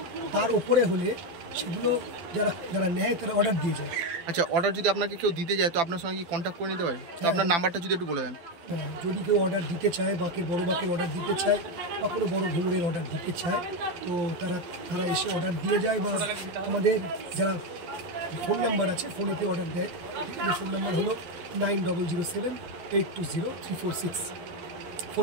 তার ওপরে হলে সেগুলো যারা নেয় তারা অর্ডার দিয়ে যায়। আচ্ছা, অর্ডার যদি আপনাকে কেউ দিতে যায় তো আপনার সঙ্গে কি কন্ট্যাক্ট করে নিতে পারে? তো আপনার নাম্বারটা যদি একটু বলে দেন। হ্যাঁ, যদি কেউ অর্ডার দিতে চায়, বড় বাঁকের অর্ডার দিতে চায় বা কোনো বড় ঘুঙুরের অর্ডার দিতে চায়, তো তারা এসে অর্ডার দিয়ে যায়। বা আমাদের যারা ফোন নাম্বার আছে, ফোনেতে অর্ডার দেয়, ঠিক আছে। ফোন নাম্বার হলো 9007820346।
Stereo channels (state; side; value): late; left; 12 ms